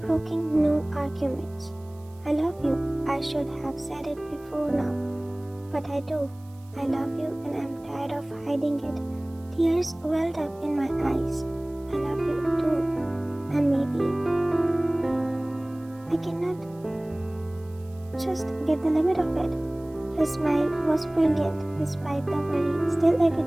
broking no arguments. I love you. I should have said it before now. But I do. I love you and I'm tired of hiding it. Tears welled up in my eyes. I love you too. And maybe I cannot just get the limit of it. His smile was brilliant despite the worry still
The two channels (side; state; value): right; noise; hiss, 29 dB below the sound